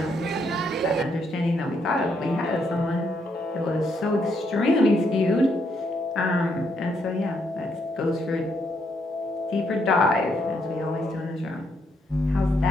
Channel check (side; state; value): both; normal; correlation 0.75